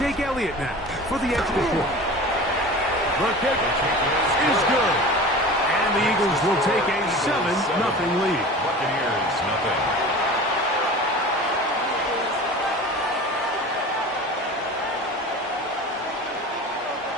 Elliott now for the extra point. The kick is good. And the Eagles will take a 7-0 lead. Buccaneers, nothing.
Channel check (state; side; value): normal; both; correlation 0.36